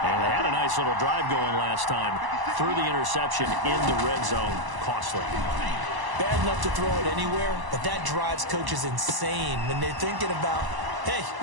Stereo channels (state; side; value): late; left; 1.0 ms